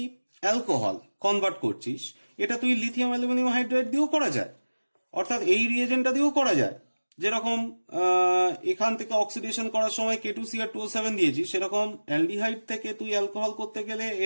অ্যালকোহল কনভার্ট করছিস, এটা তুই লিথিয়াম অ্যালুমিনিয়াম হাইড্রাইড দিয়েও করা যায়, অর্থাৎ এই রিয়েজেন্টটা দিয়েও করা যায়। যেরকম এখান থেকে অক্সিডেশন করার সময় K2Cr2O7 দিয়েছি, সেরকম অ্যালডিহাইড থেকে তুই অ্যালকোহল করতে গেলে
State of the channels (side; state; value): both; inverted; correlation -1.00